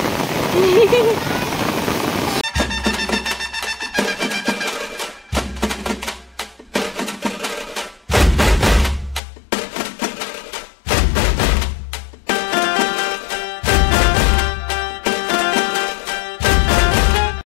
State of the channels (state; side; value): drops out; right; at 9.2 s